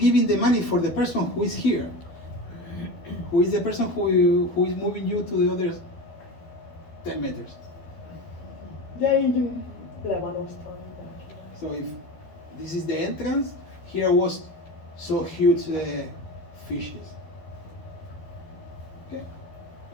the money for the person who is here, who is the person who is moving you to the other 10 meters. De így le van osztva. So if this is the entrance, here was so huge fishes. Okay.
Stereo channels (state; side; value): late; right; 12 ms